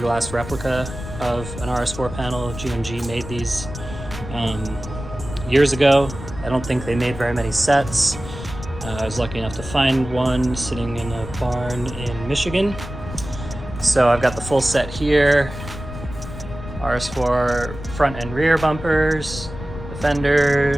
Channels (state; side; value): noise; left; rumble, 11 dB below the sound